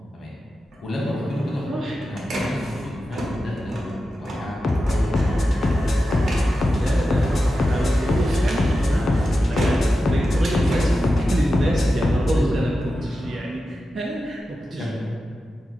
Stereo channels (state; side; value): normal; both; correlation 0.91